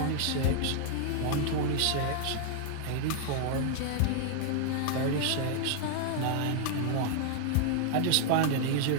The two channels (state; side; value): different; both; correlation 0.00